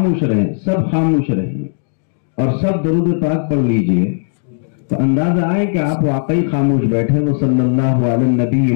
رہیں، سب خاموش رہیں اور سب درود پاک پڑھ لیجئے تو اندازہ آئے کہ آپ واقعی خاموش بیٹھے. وہ صلی اللہ علیہ النبی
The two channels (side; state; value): right; silent; digital silence